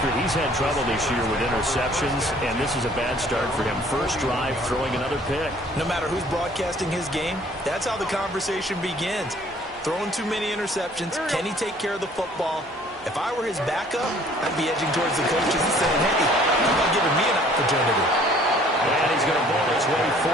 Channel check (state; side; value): normal; both; correlation 0.56